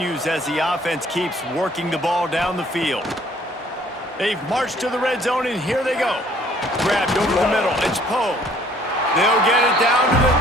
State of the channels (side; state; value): both; normal; correlation 0.59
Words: as the offense keeps working the ball down the field. They've marched to the red zone, and here they go. Grabbed over the middle. It's Poe. They'll get it down to the